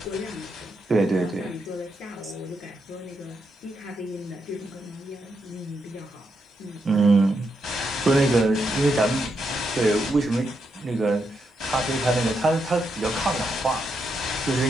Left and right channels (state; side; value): normal; both; correlation 0.82